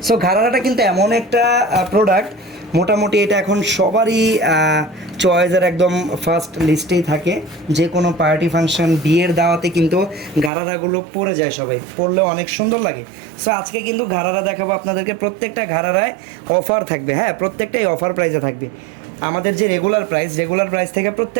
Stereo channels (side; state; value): left; drops out; at 10.5 s